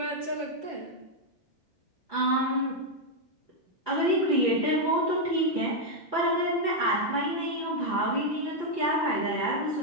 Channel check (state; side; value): late; right; 5.9 ms